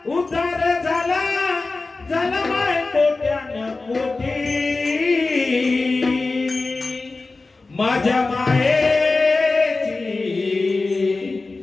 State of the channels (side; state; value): right; quieter; 3.6 dB